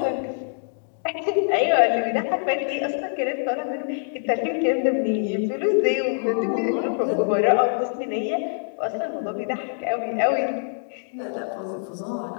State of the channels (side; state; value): right; silent; digital silence